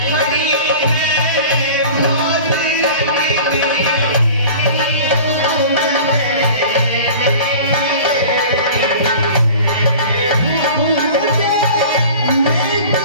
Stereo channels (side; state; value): both; inverted; correlation -0.40